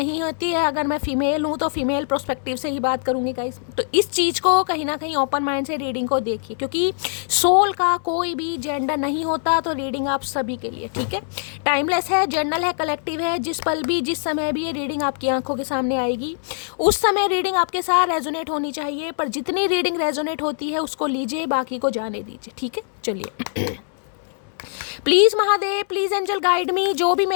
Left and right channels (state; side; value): silent; right; digital silence